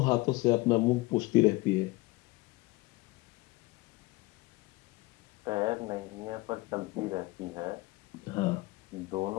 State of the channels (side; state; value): right; quieter; 21.8 dB